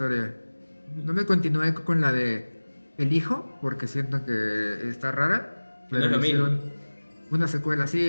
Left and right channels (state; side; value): inverted; both; correlation -1.00